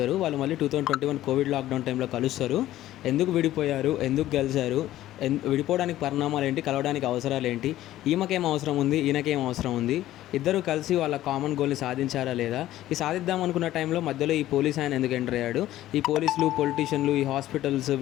వాళ్ళు మళ్ళీ 2021 కోవిడ్ లాక్డౌన్ టైంలో కలుస్తారు. ఎందుకు విడిపోయారు, ఎందుకు కలిశారు, విడిపోవడానికి పరిణామాలు ఏంటి, కలవడానికి అవసరాలు ఏంటి, ఈమెకేం అవసరం ఉంది, ఈయనకేం అవసరం ఉంది, ఇద్దరు కలిసి వాళ్ళ కామన్ గోల్ని సాధించారా లేదా, ఈ సాధిద్దాం అనుకున్న టైంలో మధ్యలో ఈ పోలీస్ ఆయన ఎందుకు ఎంటర్ అయ్యాడు, ఈ పోలీసులు, పొలిటీషియన్లు, ఈ హాస్పిటల్స్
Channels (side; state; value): right; quieter; 14.2 dB